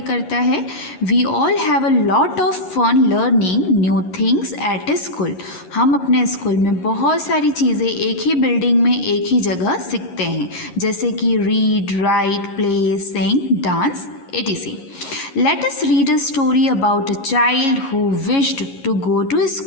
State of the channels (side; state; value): right; late; 11 ms